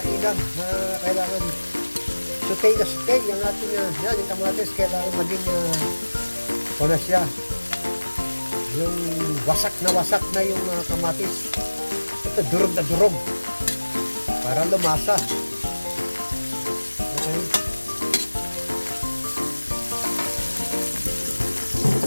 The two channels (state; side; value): inverted; both; correlation -1.00